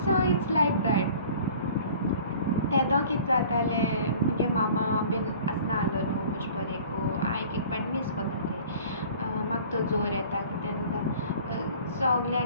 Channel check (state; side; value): inverted; both; correlation -0.47